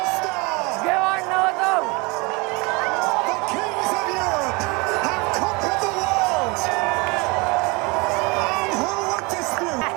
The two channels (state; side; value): quieter; left; 27.2 dB